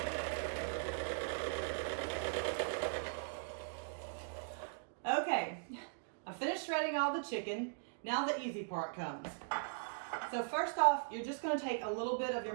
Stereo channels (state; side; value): silent; left; digital silence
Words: Okay, I finished shredding all the chicken. Now the easy part comes. So first off, you're just going to take a little bit of your